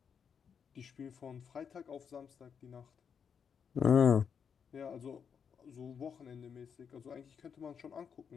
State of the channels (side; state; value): right; quieter; 6.9 dB